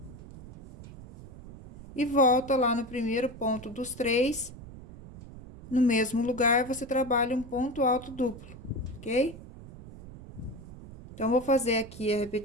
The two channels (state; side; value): noise; right; rumble, 14 dB below the sound